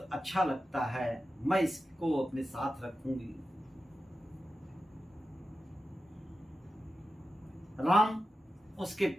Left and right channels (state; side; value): normal; both; correlation 0.92